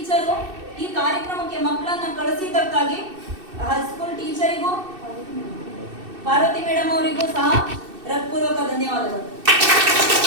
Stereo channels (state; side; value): late; left; 2.6 ms